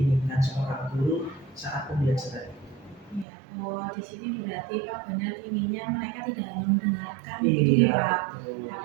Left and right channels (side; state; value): left; drops out; at 3.2 s